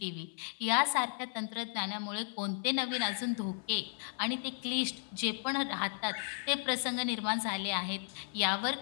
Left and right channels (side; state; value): right; silent; 55 dB below the other